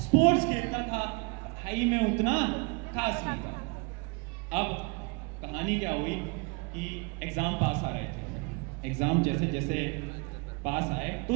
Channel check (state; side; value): quieter; left; 30.8 dB